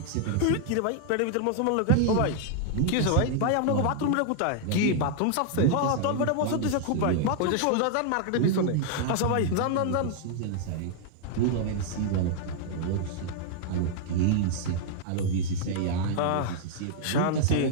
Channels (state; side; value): different; both; correlation 0.00